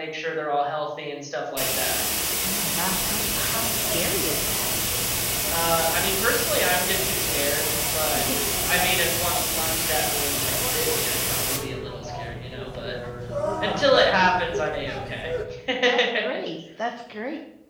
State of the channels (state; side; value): identical; both; correlation 1.00